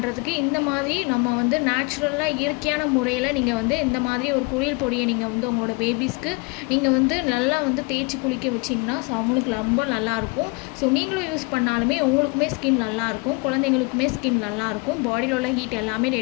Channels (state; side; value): quieter; right; 29.4 dB